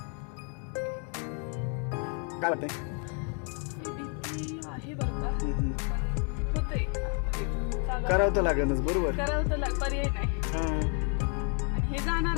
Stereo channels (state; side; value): quieter; right; 39.8 dB